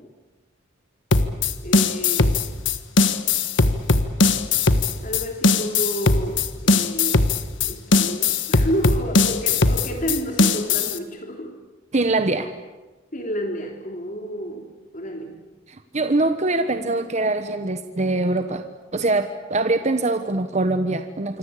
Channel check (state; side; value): normal; both; correlation 0.45